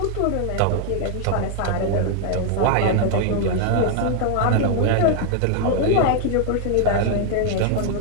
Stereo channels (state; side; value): different; both; correlation 0.00